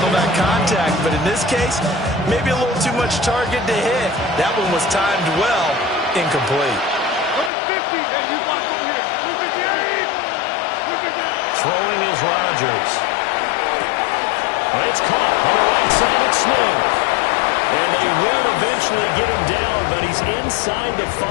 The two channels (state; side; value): drops out; right; at 7.5 s